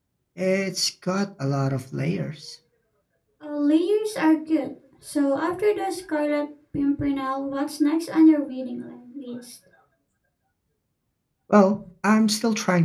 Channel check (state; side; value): identical; both; correlation 1.00